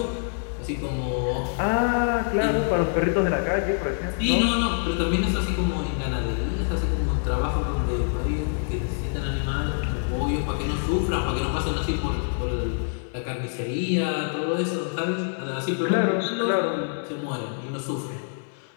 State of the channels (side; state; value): right; silent; 58 dB below the other